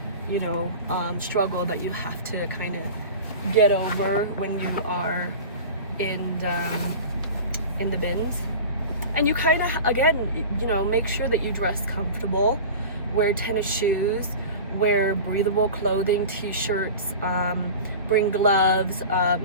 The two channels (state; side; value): inverted; both; correlation -0.34